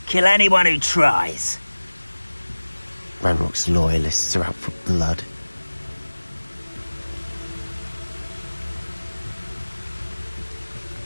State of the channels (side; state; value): both; inverted; correlation -1.00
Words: Kill anyone who tries. Ranrock's loyalists are out for blood.